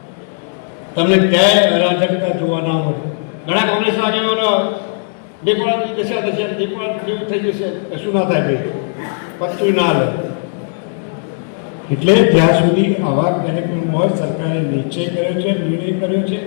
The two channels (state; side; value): silent; right; digital silence